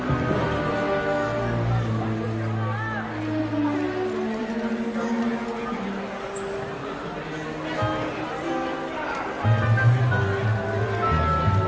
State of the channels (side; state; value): both; identical; correlation 1.00